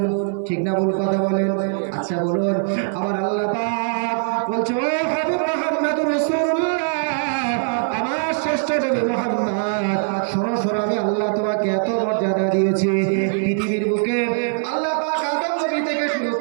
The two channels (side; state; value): left; silent; 57 dB below the other